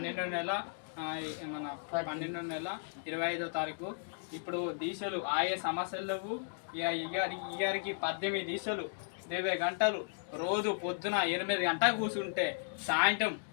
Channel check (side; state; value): right; silent; digital silence